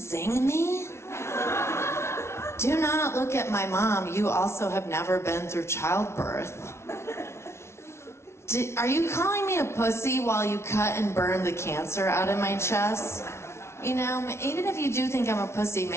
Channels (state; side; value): late; right; 0.13 ms